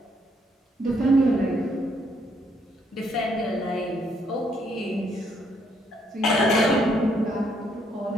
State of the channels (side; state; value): both; normal; correlation 0.71